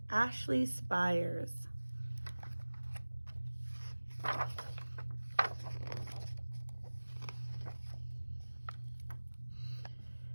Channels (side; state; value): both; inverted; correlation -1.00